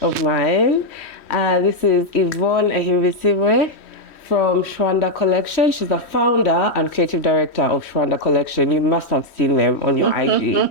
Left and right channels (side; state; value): right; late; 3.1 ms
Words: of mine. This is Yvonne Ahimbisibwe from Shwanda Kollection. She's the founder and creative director of Shwanda Kollection. You must have seen them on your